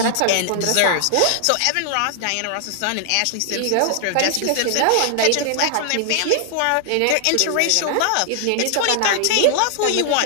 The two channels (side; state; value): both; different; correlation 0.00